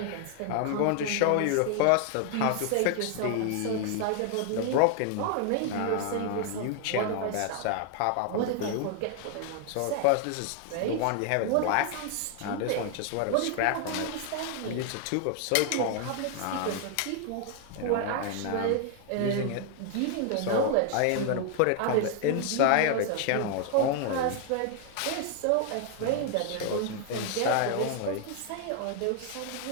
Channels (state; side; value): different; both; correlation 0.00